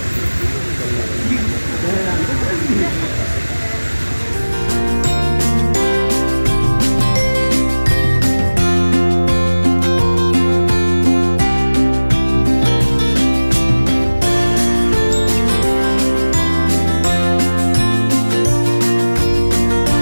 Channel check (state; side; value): inverted; both; correlation -1.00